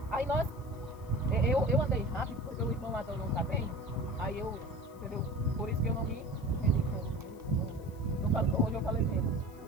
Aí eu andei rápido porque o irmão Adão não está bem. Aí eu, entendeu? Por isso que eu não me entendi. Hoje eu falei menos.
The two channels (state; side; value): noise; left; hiss, 28 dB below the sound